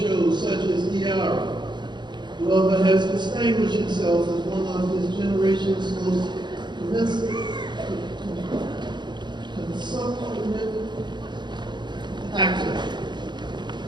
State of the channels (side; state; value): left; late; 0.21 ms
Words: such as ER, Glover has distinguished himself as one of his generation's most consummate actors.